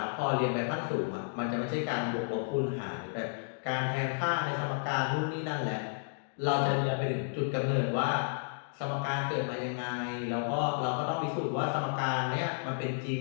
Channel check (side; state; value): right; silent; digital silence